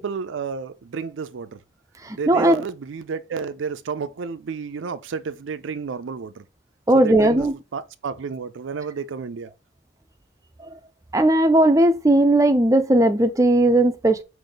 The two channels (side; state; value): both; normal; correlation 0.68